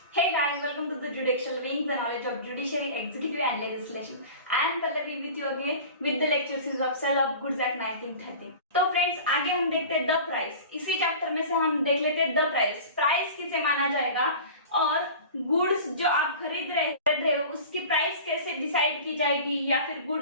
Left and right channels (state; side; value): inverted; both; correlation -0.38